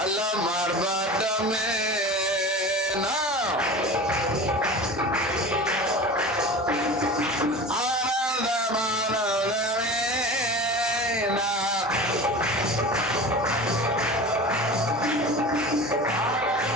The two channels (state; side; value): normal; both; correlation 0.34